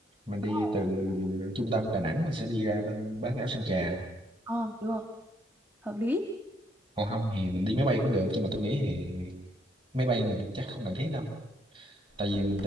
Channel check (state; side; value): normal; both; correlation 0.72